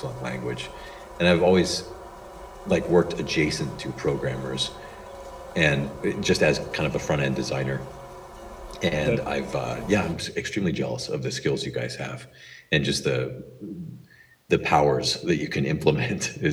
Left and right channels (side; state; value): both; identical; correlation 1.00